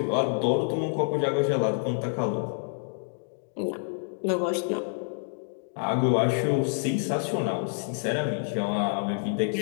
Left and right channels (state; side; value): silent; right; digital silence